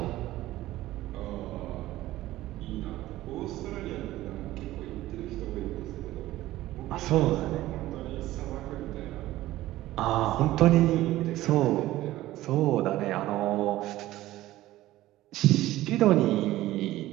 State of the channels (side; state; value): left; quieter; 15.8 dB